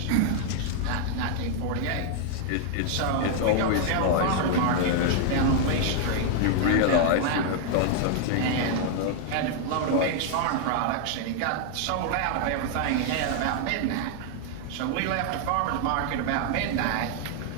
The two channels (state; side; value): different; both; correlation 0.00